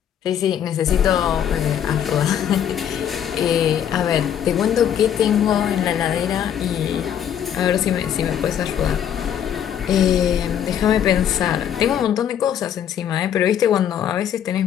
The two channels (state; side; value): quieter; right; 9.4 dB